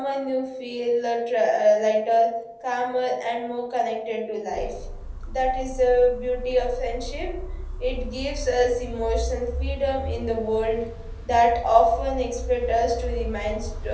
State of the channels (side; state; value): both; identical; correlation 1.00